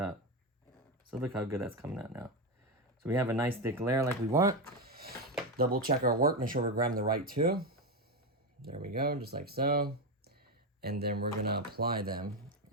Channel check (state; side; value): normal; both; correlation 0.12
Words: So look how good that's coming out now. So So we have a nice thick layer like we want. Double check our work, make sure we're grabbing the right two. There we go, just like so. And then we're gonna apply them